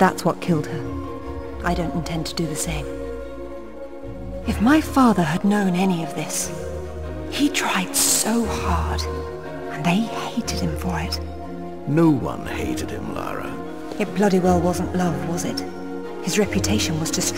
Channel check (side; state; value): both; identical; correlation 1.00